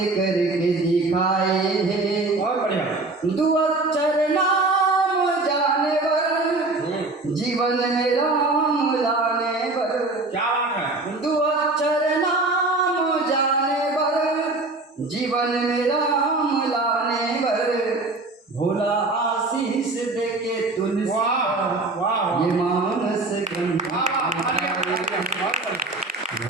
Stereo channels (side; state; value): left; quieter; 3.2 dB